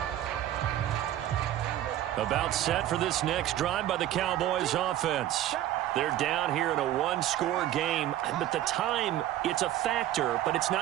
About set for this next drive by the Cowboys offense. They're down here in a one-score game, but the time, it's a factor, but it's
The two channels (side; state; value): left; quieter; 12.9 dB